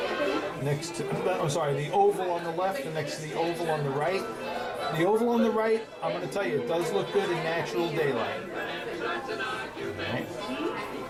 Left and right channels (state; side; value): identical; both; correlation 1.00